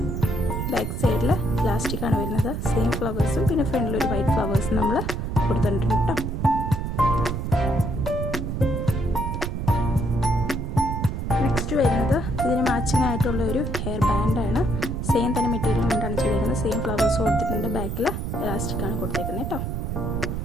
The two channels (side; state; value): right; noise; rumble, 3 dB below the sound